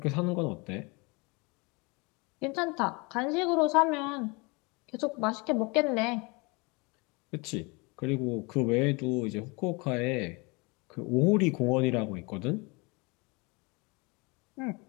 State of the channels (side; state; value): right; quieter; 28.0 dB